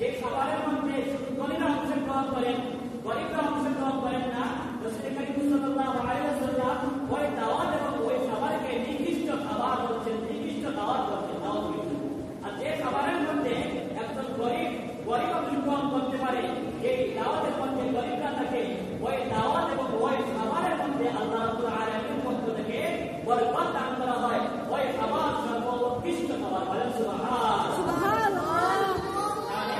খাবারের মধ্যে শুধু ধনীরা অংশগ্রহণ করেন, গরিবরা অংশগ্রহণ করেন না, রাসূল করিম সাল্লাল্লাহু আলাইহি ওয়াসাল্লাম ওই দাওয়াত এবং ওই খাবারকে নির্দিষ্ট খাবার বলছেন, নির্দিষ্ট দাওয়াত বলছেন, নাউযুবিল্লাহ। আর যে খাবারের মধ্যে একজন গরিব অংশগ্রহণ করতে পারে, যে দাওয়াতের মধ্যে গরিবরা থাকে, ওই দাওয়াত এবং ওই খাবারের মধ্যে আল্লাহ রাব্বুল আলামিনের পক্ষ থেকে বরকত দান করা হয়, ওই খাবার সর্বোৎকৃষ্ট খাবার। বলেন সুবহানাল্লাহ।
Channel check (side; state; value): both; identical; correlation 1.00